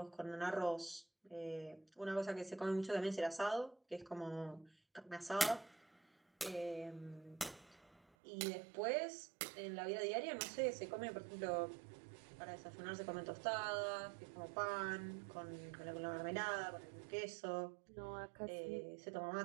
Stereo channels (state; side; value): drops out; left; at 8.0 s